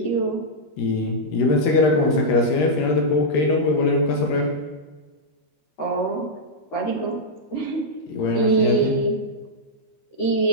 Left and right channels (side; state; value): right; late; 13 ms